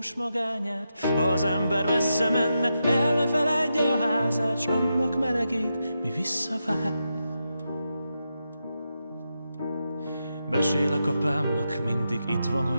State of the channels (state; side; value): inverted; both; correlation -0.86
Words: magányát. Ha az ember messze menne, el ne feledje a házát, s annak melegét, mi visszavár. Mesélek apámnak, mindig itt van,